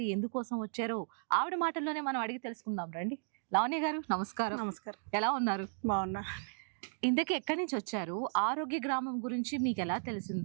ఎందుకోసం వచ్చారో ఆవిడ మాటల్లోనే మనం అడిగి తెలుసుకుందాం రండి. లావణ్య గారు నమస్కారం. నమస్కారం. ఎలా ఉన్నారు? బాగున్నా. ఇంతకీ ఎక్కడి నుంచి వచ్చారు? ఆరోగ్య గ్రామం గురించి మీకు ఎలా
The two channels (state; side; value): silent; left; digital silence